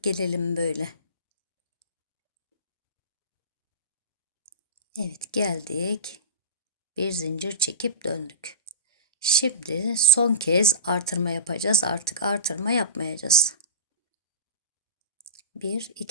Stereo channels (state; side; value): inverted; both; correlation -0.31